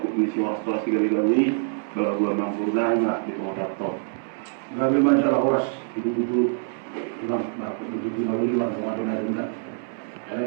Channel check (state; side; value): silent; left; 62 dB below the other